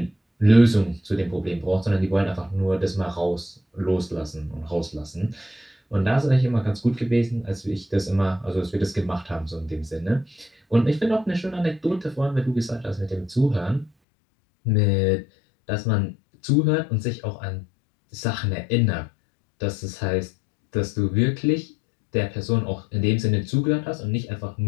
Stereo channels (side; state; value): right; drops out; at 13.9 s